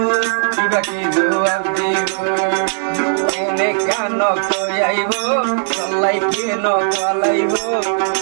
কিবা কি জবাব দিব এনে কান কয়াইব চলাই কেন কলাইব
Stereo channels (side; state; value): left; silent; digital silence